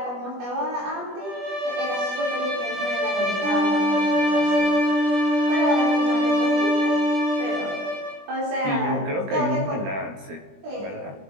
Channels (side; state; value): left; late; 20 ms